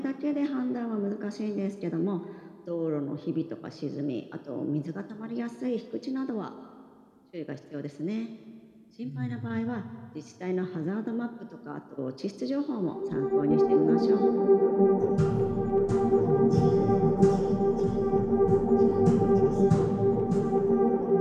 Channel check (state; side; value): identical; both; correlation 1.00